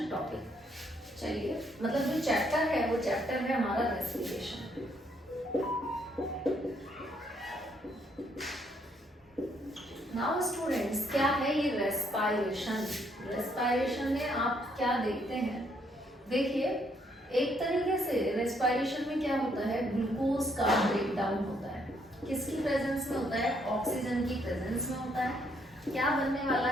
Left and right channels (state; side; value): normal; both; correlation 0.71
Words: टॉपिक। चलिए, मतलब जो चैप्टर है वो चैप्टर है हमारा रेस्पिरेशन। नाउ स्टूडेंट्स, क्या है ये रेस्पायरेशन? रेस्पायरेशन में आप क्या देखते हैं? देखिए, एक तरीके से रेस्पायरेशन में क्या होता है, ग्लूकोज का ब्रेकडाउन होता है। किसकी प्रेजेंस में होता है? ऑक्सीजन की प्रेजेंस में होता है। क्या बनने वाला